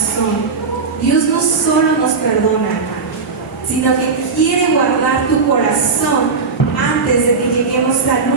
Dios no solo nos perdona, hermano, sino que quiere guardar tu corazón antes de que lleguemos al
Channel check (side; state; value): left; quieter; 4.7 dB